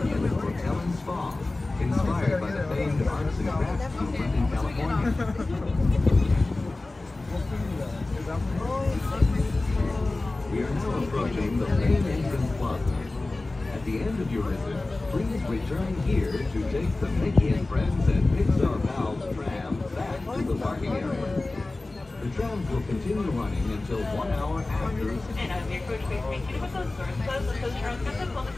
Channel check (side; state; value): right; quieter; 3.1 dB